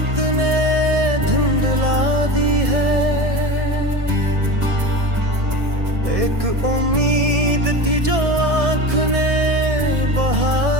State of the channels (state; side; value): late; left; 1.6 ms